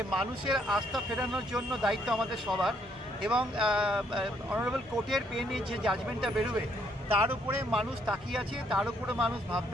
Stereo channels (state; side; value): normal; both; correlation 0.70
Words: মানুষের আস্থা ফেরানোর জন্য দায়িত্ব আমাদের সবার, এবং অনারেবল কোর্টের পেনে যে জাজমেন্টটা বেরোবে তার উপরে মানুষ তাকিয়ে আছে, তার উপরে মানুষ